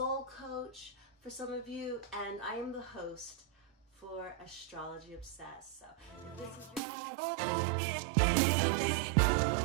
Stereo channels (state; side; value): drops out; left; at 6.8 s